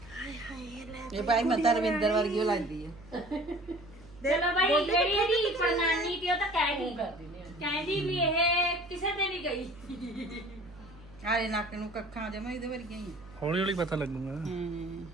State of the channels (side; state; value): right; noise; hum, 21 dB below the sound